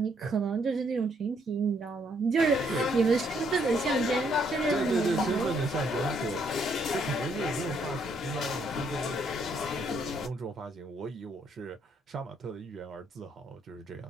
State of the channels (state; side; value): normal; both; correlation 0.71